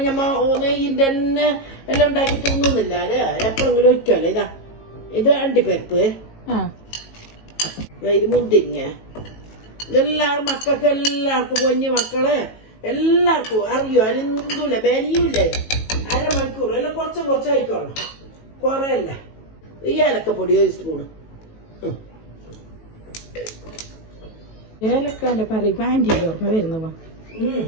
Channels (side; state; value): right; late; 18 ms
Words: ഞമ്മ നെയ്യിന്റെ തന്നെ എല്ലാം ഉണ്ടാക്കി തിന്നുന്നില്ല അല്ലേ, എപ്പോഴെങ്കിലും ഒഴിക്കാല്ലേ. ഇത് അണ്ടിപ്പരിപ്പ്, ഇത് മുന്തിരിങ്ങ. ഇതെല്ലാവരും മക്കൾക്ക് എല്ലാവർക്കും കുഞ്ഞു മക്കളെ എല്ലാവർക്കും അറിയോ, അരിന്തൂല ബനിയൂല്ലേ. അരമണിക്കൂർ എല്ലാം കുറച്ചായിക്കോളണം, കുറയല്ല. ഈ ഏലക്കപ്പൊടി ഒരു സ്പൂണ്. ഏലക്കാന്റെ പറയുമ്പോ ആന്റിക്ക് ഓർമ്മ വരുന്ന